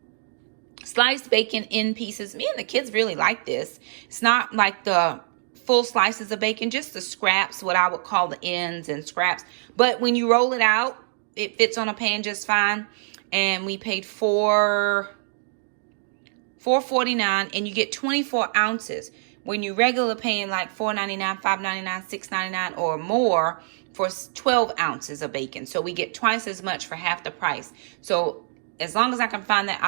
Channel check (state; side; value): silent; left; digital silence